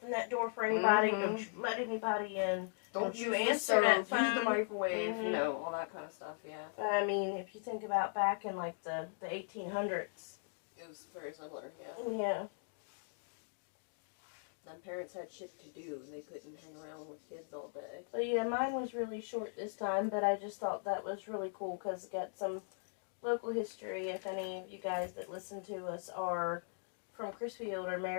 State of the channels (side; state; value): right; silent; digital silence